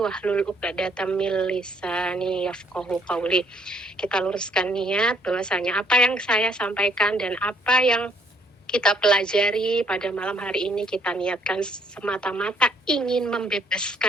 'uqdatam min lisani yafqahu qawli. Kita luruskan niat bahwasanya apa yang saya sampaikan dan apa yang kita pelajari pada malam hari ini, kita niatkan semata-mata ingin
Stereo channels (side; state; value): both; normal; correlation 0.66